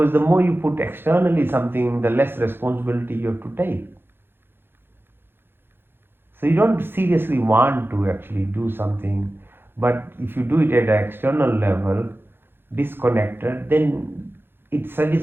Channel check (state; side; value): late; left; 0.10 ms